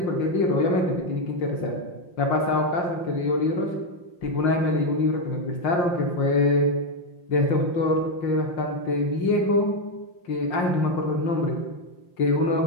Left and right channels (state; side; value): late; right; 5.7 ms